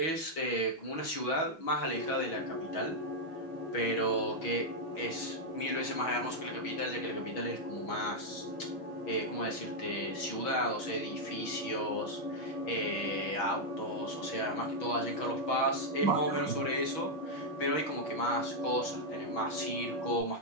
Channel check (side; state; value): right; late; 6.2 ms